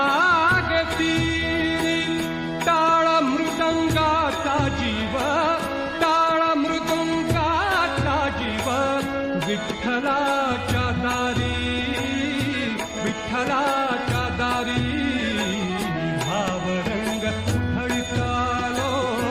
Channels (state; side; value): identical; both; correlation 1.00